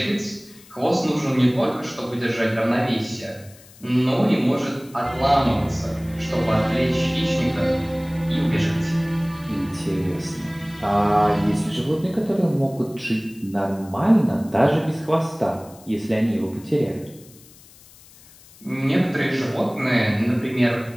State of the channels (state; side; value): noise; left; hiss, 24 dB below the sound